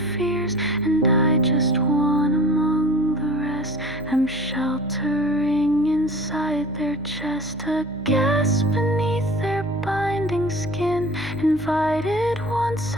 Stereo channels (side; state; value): left; noise; hum, 21 dB below the sound